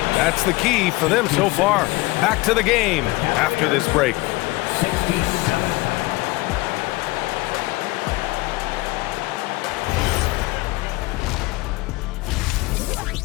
That's the key for them so far. Back to the game after this break. 67.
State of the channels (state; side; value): quieter; right; 21.3 dB